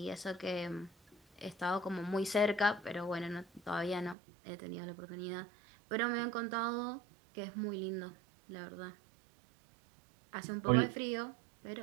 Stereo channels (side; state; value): left; drops out; at 4.2 s